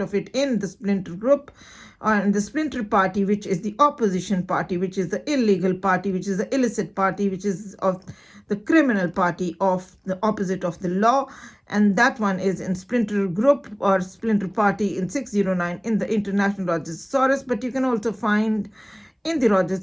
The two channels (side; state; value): both; identical; correlation 1.00